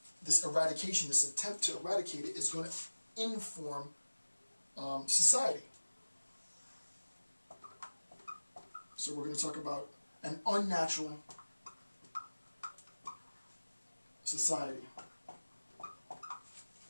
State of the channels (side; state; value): both; inverted; correlation -1.00